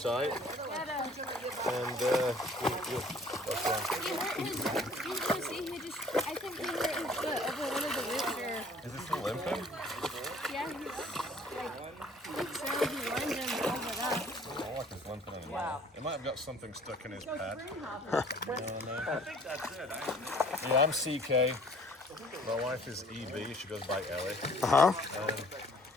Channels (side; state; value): both; normal; correlation 0.54